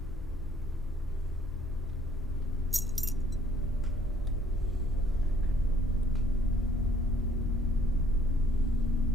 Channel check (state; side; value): normal; both; correlation 0.61